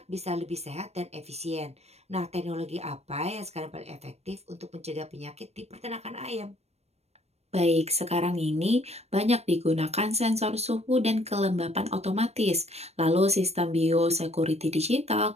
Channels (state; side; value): late; left; 0.31 ms